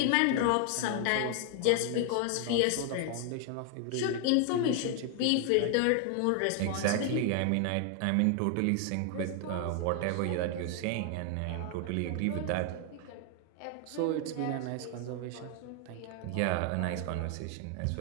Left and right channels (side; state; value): both; different; correlation 0.00